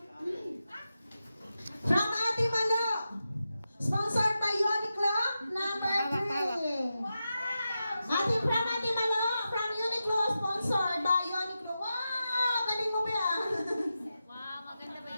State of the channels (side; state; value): both; inverted; correlation -0.90